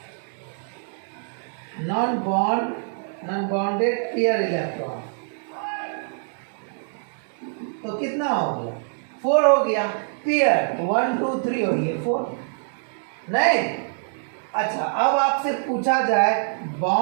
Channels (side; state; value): left; silent; digital silence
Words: pair electron, तो कितना हो गया, 4 हो गया। पेयर 1 2 3 हो गया 4। नहीं, अच्छा, अब आपसे पूछा जाए